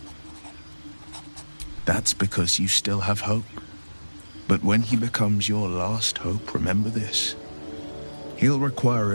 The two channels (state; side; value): inverted; both; correlation -1.00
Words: That's because you still have hope. But when he becomes your last hope, remember this. He'll require